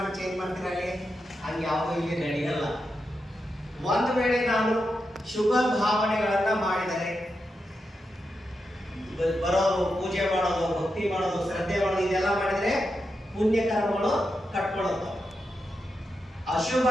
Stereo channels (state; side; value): normal; both; correlation 0.87